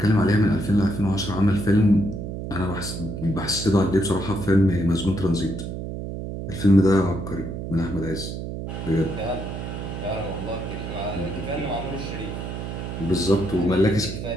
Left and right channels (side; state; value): right; noise; hum, 6 dB below the sound